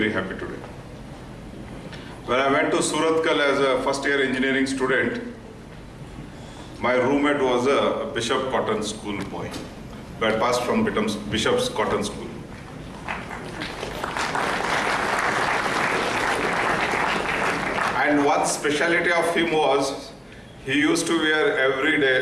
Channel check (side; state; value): both; identical; correlation 1.00